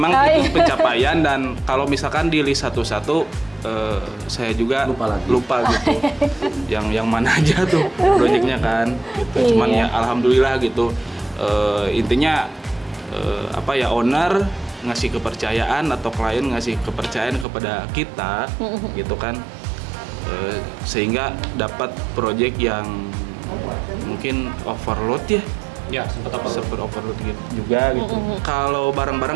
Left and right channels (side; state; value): left; drops out; at 17.4 s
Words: itu pencapaian, dan kalau misalkan di list satu-satu saya juga lupa gitu. yang mana aja tuh proyeknya kan gitu. Cuman ya alhamdulillah gitu. Intinya owner ngasih kepercayaan atau klien ngasih kepercayaan kepada kita gitu kan, sehingga dapat proyek yang mungkin overload ya sempat overload gitu juga gitu. Kalau